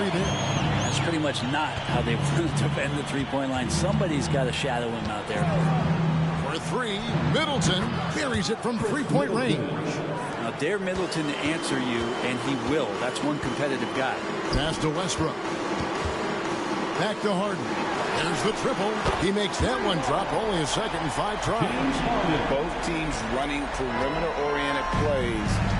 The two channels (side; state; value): both; identical; correlation 1.00